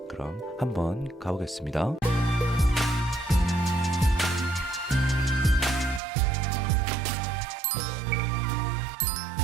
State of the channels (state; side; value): drops out; left; at 6.0 s